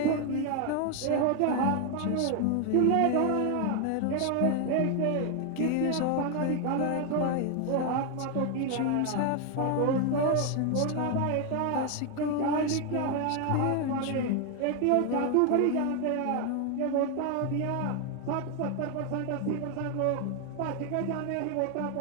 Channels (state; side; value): different; both; correlation 0.01